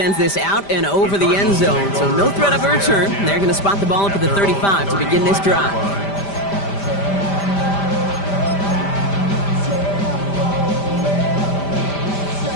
this out and over the end zone, so no threat of a return. They're going to spot the ball up at the 35 to begin this drive.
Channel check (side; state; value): right; late; 5.1 ms